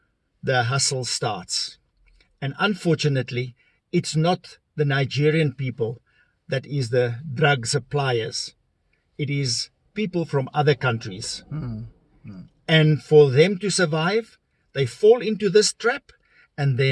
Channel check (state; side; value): identical; both; correlation 1.00